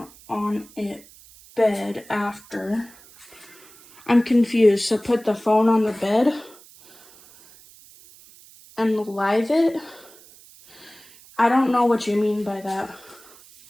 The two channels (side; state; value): right; noise; hiss, 24 dB below the sound